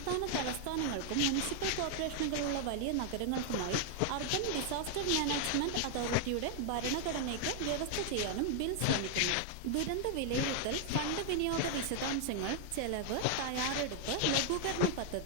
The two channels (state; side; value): different; both; correlation 0.00